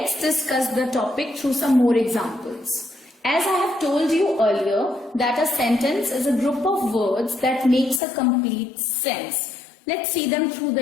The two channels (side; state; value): right; drops out; at 8.0 s